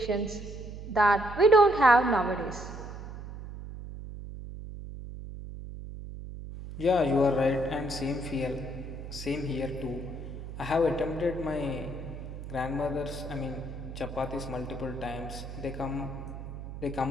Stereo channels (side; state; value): right; noise; hum, 10 dB below the sound